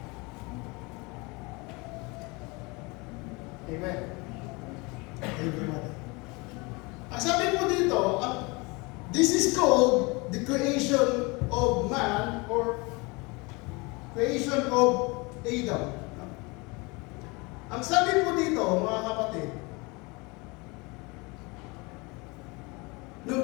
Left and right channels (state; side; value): quieter; right; 26.8 dB